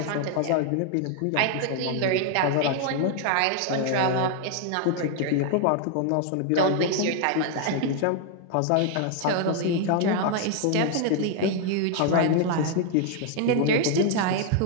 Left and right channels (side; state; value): both; different; correlation 0.00